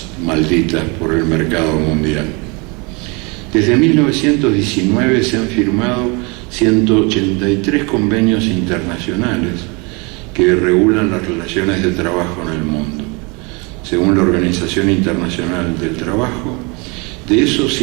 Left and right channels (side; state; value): left; quieter; 29.7 dB